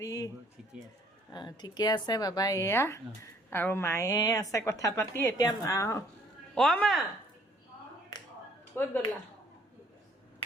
ঠিকে আছে বাবা এয়া আৰু মায়ে আছে কথা পাতি এতিয়া মা ক'ত গ'লা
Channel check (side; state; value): both; normal; correlation 0.60